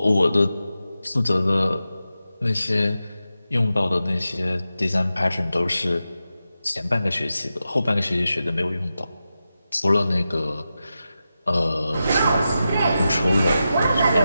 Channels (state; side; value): inverted; both; correlation -0.91